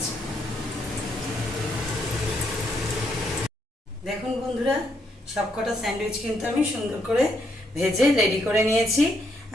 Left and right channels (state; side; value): normal; both; correlation 0.75